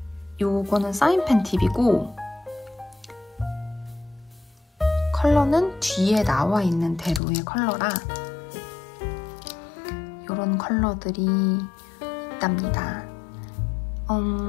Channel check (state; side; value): drops out; right; at 7.2 s